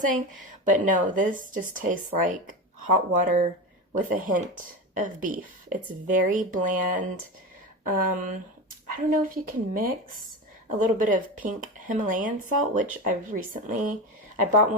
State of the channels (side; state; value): both; normal; correlation 0.22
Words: But no, this just tastes like hot water with a hint of beef. It's very bland. I don't know if you can mix a little bit of pink Himalayan salt, which I bought